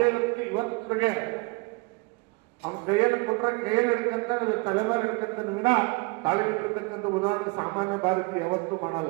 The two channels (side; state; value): left; quieter; 28.4 dB